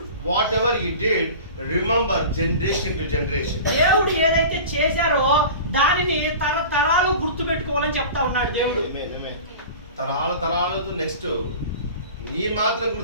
whatever he did, remember generation to generation. దేవుడు ఏదైతే చేశారో దానిని తరతరాలు గుర్తు పెట్టుకోవాలని చెప్తా ఉన్నాడు దేవుడు. తరాలతో నెక్స్ట్ నీ మాత్రం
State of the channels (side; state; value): both; inverted; correlation -0.36